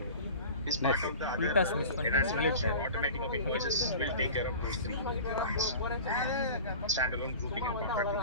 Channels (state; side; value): inverted; both; correlation -0.37